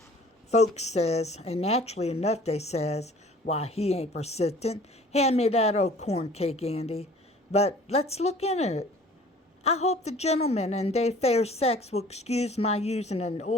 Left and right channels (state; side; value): normal; both; correlation 0.50